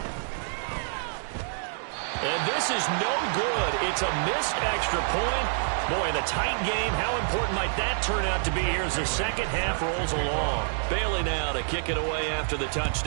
And this is no good. It's a missed extra point. Boy, in a tight game, how important might that turn out to be here as the second half rolls along? Bailey now to kick it away after the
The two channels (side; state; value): left; silent; digital silence